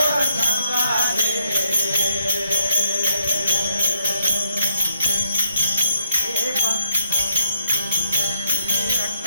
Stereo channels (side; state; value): both; inverted; correlation -0.75